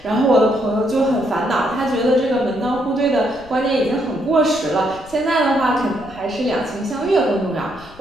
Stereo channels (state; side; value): noise; left; rumble, 23 dB below the sound